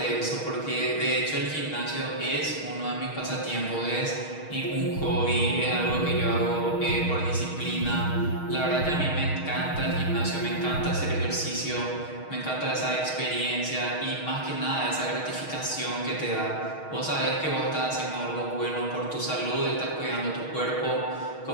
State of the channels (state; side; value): late; right; 6.4 ms